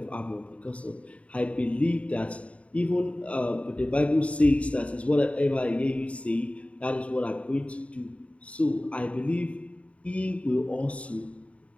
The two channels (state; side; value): late; right; 0.064 ms